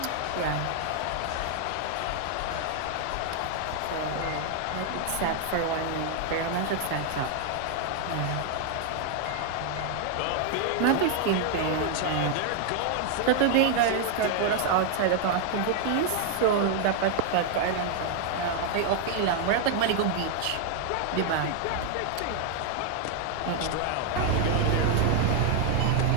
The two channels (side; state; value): both; different; correlation 0.00